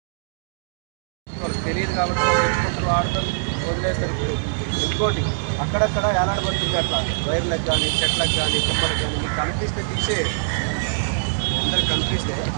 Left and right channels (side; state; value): left; silent; digital silence